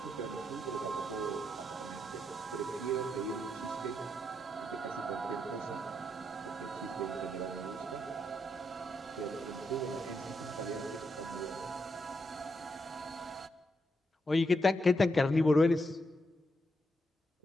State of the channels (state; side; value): normal; both; correlation 0.81